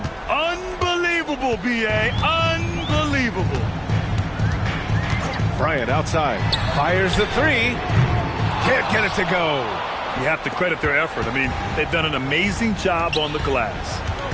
Unbelievable, B.A. Unbelievable. Bryant outside. Fires the 3. Can't get it to go. You have to credit their effort. I mean, they've done an amazing job on the glass.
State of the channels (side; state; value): both; identical; correlation 1.00